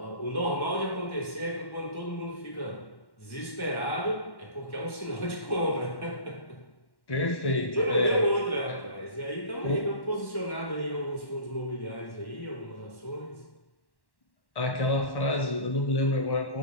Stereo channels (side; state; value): right; late; 1.1 ms